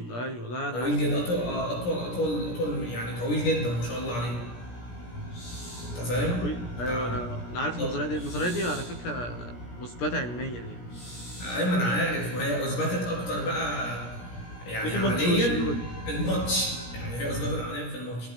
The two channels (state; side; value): late; right; 17 ms